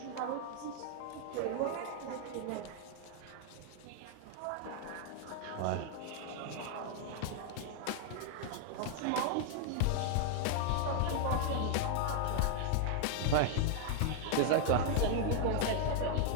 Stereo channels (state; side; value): different; both; correlation 0.00